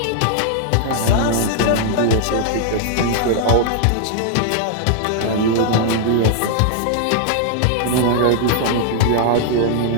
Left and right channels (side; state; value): both; different; correlation -0.01